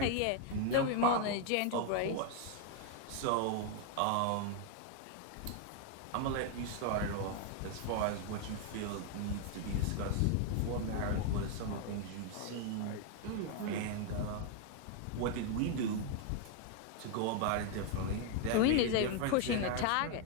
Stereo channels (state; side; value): different; both; correlation 0.01